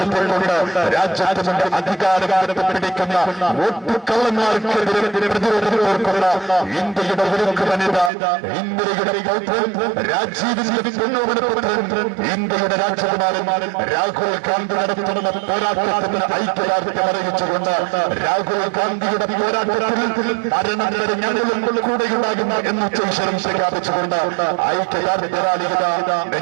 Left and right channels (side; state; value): left; drops out; at 8.1 s